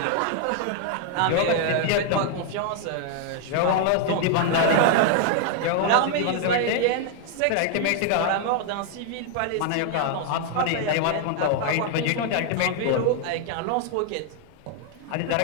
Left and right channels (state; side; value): different; both; correlation 0.00